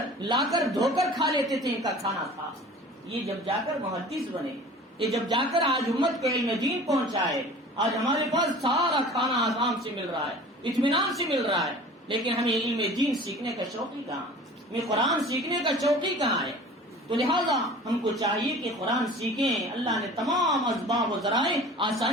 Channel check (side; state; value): both; normal; correlation 0.42